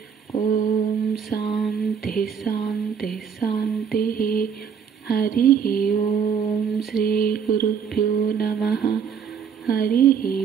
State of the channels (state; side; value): quieter; left; 7.2 dB